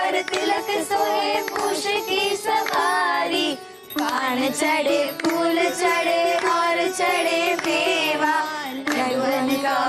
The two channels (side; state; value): both; identical; correlation 1.00